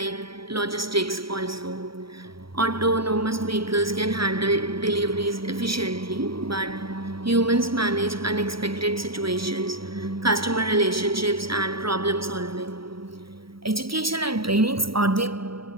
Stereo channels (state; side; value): late; left; 0.75 ms